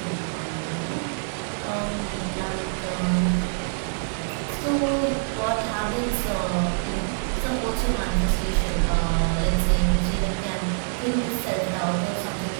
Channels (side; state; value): left; silent; digital silence